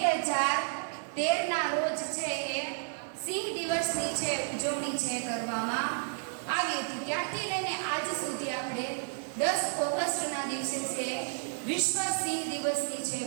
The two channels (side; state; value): left; silent; 57 dB below the other